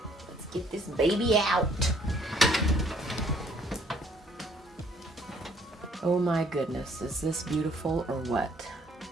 let's get this baby out. Oh my goodness, is this beautiful or what?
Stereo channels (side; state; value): both; normal; correlation 0.62